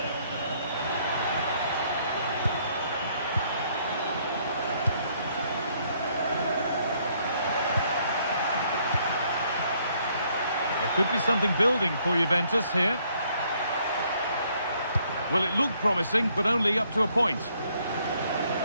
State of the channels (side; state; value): both; inverted; correlation -0.68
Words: Could be something building for Juventus here. Well, it looked promising, but only up to a point.